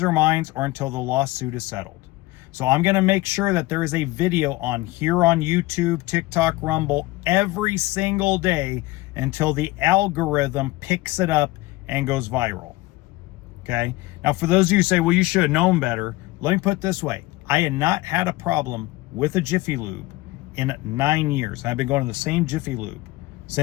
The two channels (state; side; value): quieter; right; 19.8 dB